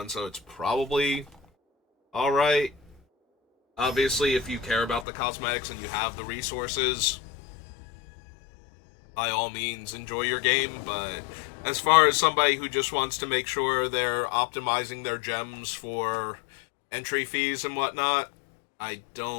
so it's probably alright. Obviously, if you care about the cosmetics and you have the resources, by all means, enjoy your game, but as far as somebody who just wants to make sure they're optimizing their gems for entry fees and whatnot, I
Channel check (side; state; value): right; drops out; at 5.1 s